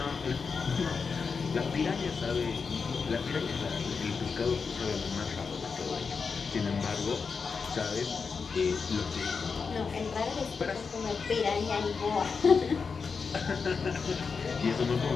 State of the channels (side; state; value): right; quieter; 5.3 dB